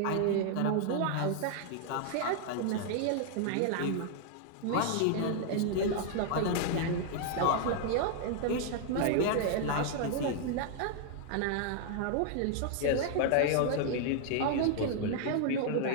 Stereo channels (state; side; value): different; both; correlation -0.01